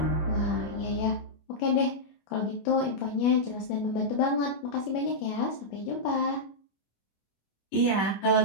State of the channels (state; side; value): late; right; 25 ms